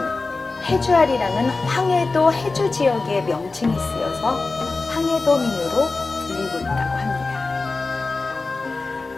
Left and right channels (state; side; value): quieter; right; 3.7 dB